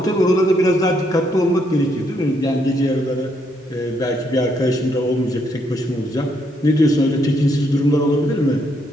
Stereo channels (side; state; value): both; normal; correlation 0.74